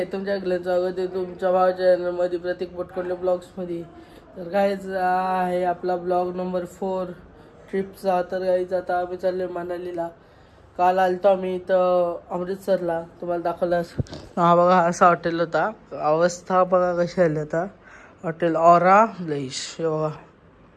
तुमच्या स्वागत आहे तुमच्या भावाच्या चॅनलमध्ये प्रतीक पटकोले ब्लॉग्समध्ये. तर गाईज आहे आपला ब्लॉग नंबर 4 ट्रिपचा. तर गाईज आता आम्ही चाललो मनालीला. काल आलतो आम्ही इथं अमृतसरला, तुम्हाला दाखवलास. हा बघा असा हॉटेल होता, अवस्था बघा कशी आली आता. हॉटेल ऑरा ब्लेश बघा.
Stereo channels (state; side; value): identical; both; correlation 1.00